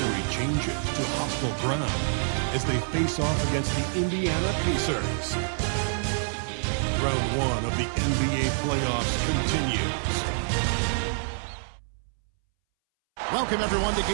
changes to hostile ground as they face off against the Indiana Pacers. Round 1 of the NBA playoffs continues. Welcome, everyone, to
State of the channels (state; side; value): silent; left; 60 dB below the other